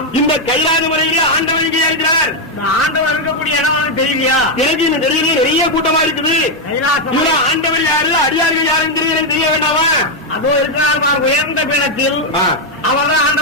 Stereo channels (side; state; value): both; normal; correlation 0.02